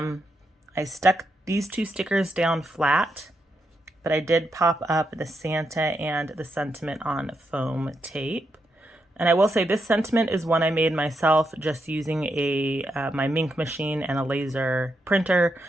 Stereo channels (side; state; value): both; normal; correlation 0.82